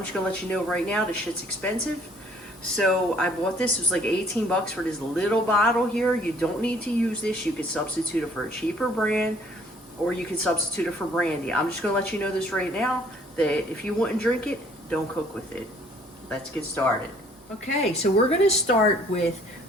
going to let you know right now, this shit's expensive. So I bought this, it was like 18 bucks for this little bottle here. You don't need to use this. You could substitute it for a cheaper brand, or you could substitute it for brandy. I'm just going to let you know this right now, that if you wouldn't drink it, don't cook with it. Let's get started. Okay, so we're going to start with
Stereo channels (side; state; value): both; normal; correlation 0.59